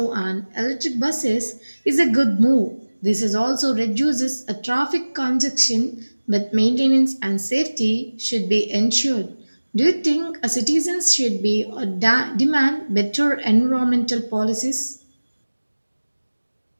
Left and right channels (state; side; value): inverted; both; correlation -1.00